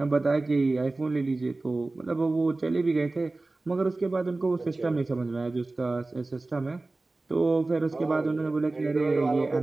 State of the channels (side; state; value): left; quieter; 3.2 dB